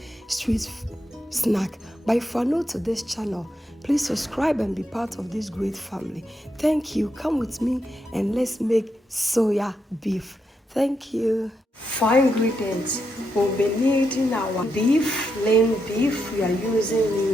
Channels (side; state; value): both; normal; correlation 0.83